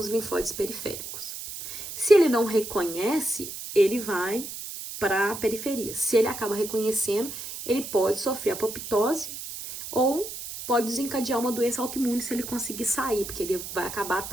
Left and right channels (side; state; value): right; noise; hiss, 9 dB below the sound